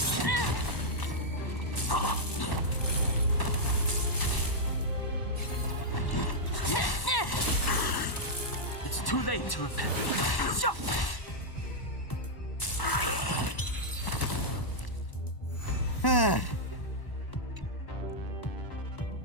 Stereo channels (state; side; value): late; right; 1.1 ms